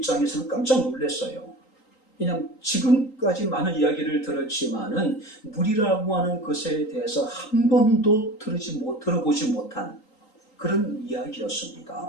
깜짝 놀랐어요. 그냥 지금까지 많은 이야기를 들었지만은 물이라고 하는 것에 대해서 한 번도 들어보지 못한 그런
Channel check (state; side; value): late; right; 3.8 ms